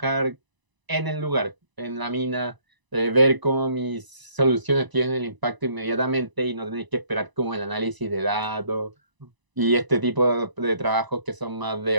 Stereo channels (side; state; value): left; late; 1.0 ms